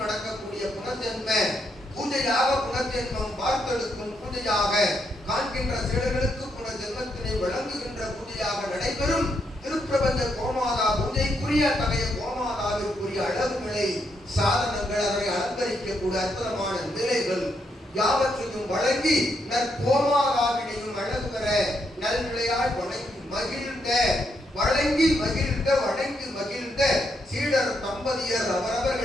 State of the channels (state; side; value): normal; both; correlation 0.78